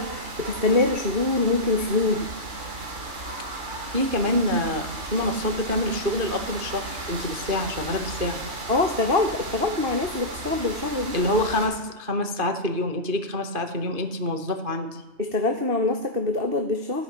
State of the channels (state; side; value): late; left; 2.5 ms